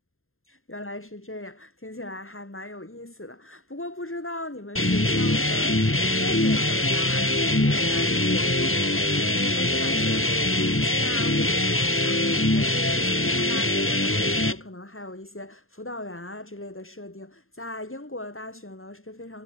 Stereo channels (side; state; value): right; late; 0.61 ms